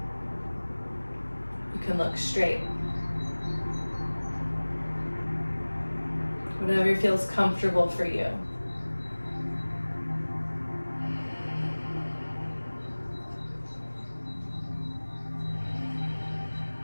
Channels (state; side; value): inverted; both; correlation -1.00